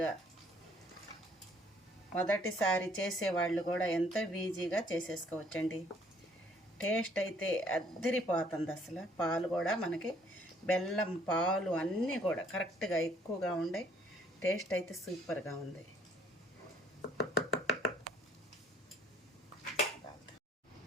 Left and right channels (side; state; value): both; normal; correlation 0.62